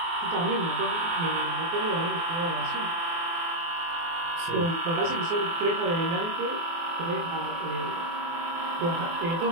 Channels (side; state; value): left; late; 24 ms